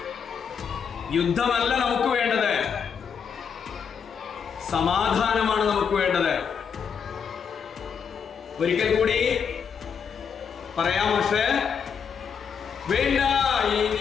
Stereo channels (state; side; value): quieter; right; 6.8 dB